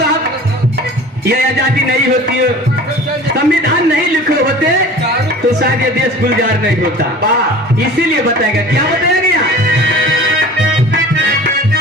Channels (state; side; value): normal; both; correlation 0.42